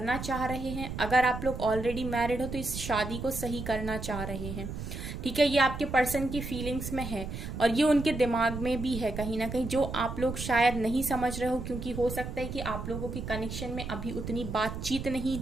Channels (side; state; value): right; noise; rumble, 7 dB below the sound